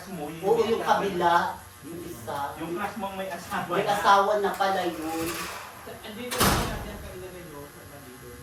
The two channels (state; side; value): identical; both; correlation 1.00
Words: mo? Oo, yung kabila, yung isa. Yung crush mo may asawa May asawa na pala yun.